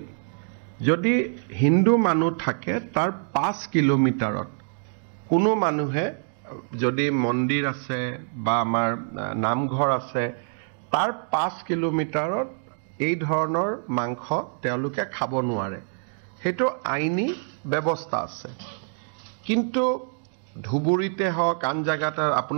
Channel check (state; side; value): silent; left; digital silence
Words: যদি হিন্দু মানুহ থাকে তাৰ 5 কিলোমিটাৰত কোনো মানুহে যদি মন্দিৰ আছে বা আমাৰ নামঘৰ আছে তাৰ 5 কিলোমিটাৰত এই ধৰণৰ মাংস তেওঁলোকে খাব নোৱাৰে। সেইটো আইনী ব্যৱস্থা আছে। কিন্তু ধুবুৰীতে হওক আন জাগাত